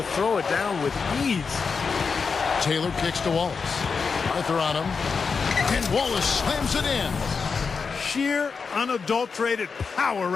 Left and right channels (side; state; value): right; quieter; 5.3 dB